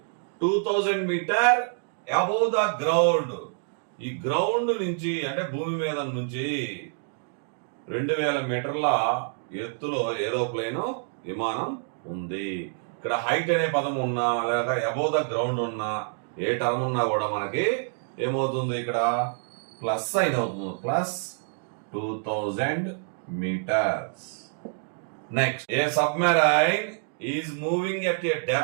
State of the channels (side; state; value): left; silent; 60 dB below the other